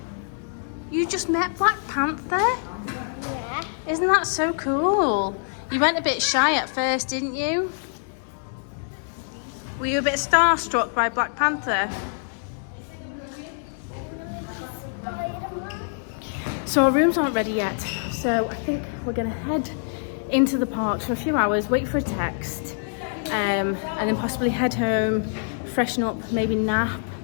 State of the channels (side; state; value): right; silent; digital silence